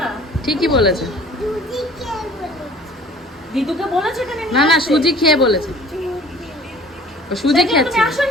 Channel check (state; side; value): normal; both; correlation 0.50